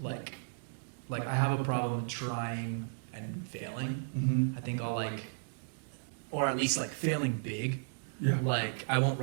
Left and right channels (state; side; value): silent; left; digital silence